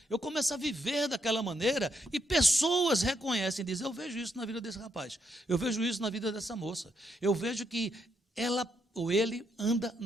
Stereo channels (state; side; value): normal; both; correlation 0.78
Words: Eu começo a viver daquela maneira e pessoas reconhecem e dizem, eu vejo isso na vida desse rapaz, eu vejo isso na vida dessa moça, eu vejo que ela ou ele anda